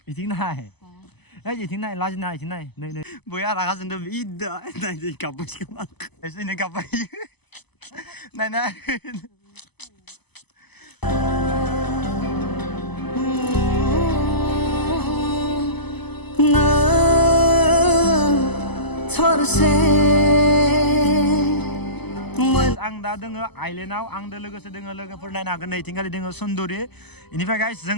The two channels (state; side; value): late; right; 0.99 ms